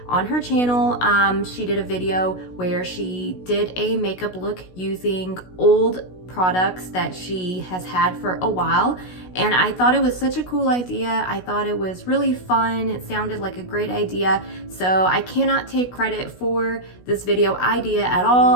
on her channel. She did a video where she did a makeup look using old products that she has had for a while, and I thought it was such a cool idea. I thought it was really fun. It sounded like a great idea, so I cannot take credit for this video idea at all.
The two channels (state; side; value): late; right; 16 ms